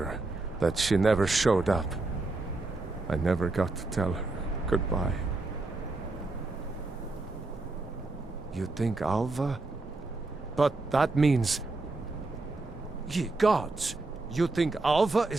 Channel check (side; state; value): left; quieter; 3.2 dB